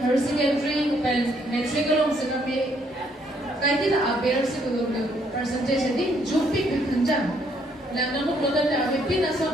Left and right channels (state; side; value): normal; both; correlation 0.69